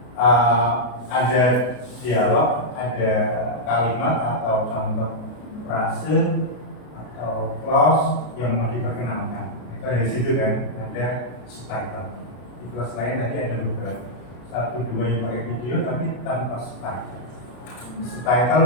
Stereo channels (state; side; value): late; right; 33 ms